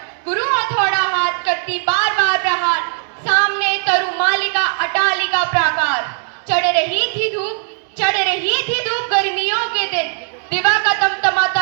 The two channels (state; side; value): silent; left; 62 dB below the other